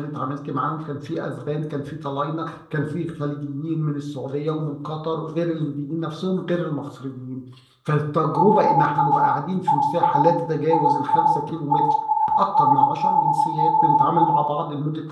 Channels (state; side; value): identical; both; correlation 1.00